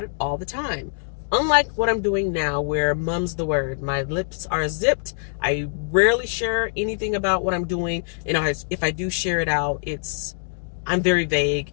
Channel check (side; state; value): right; silent; digital silence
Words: it all the time. Unlike what I'm doing now, where mum's the word. My lips are zipped. I rarely share anything about what I'm doing. And if I do share it out, it's I'm very